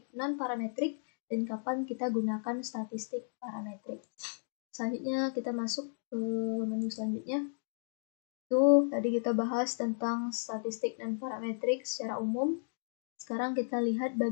non-parametrik dan kapan kita gunakan statistik parametrik. Selanjutnya kita masuk ke menu selanjutnya. Itu tadi kita bahas tentang statistik dan parametrik secara umum. Sekarang kita lihat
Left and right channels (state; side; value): silent; right; digital silence